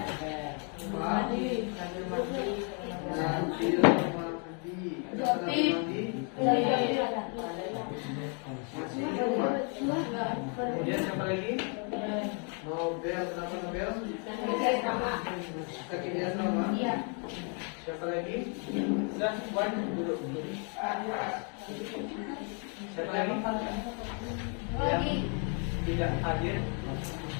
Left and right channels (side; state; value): right; quieter; 38.9 dB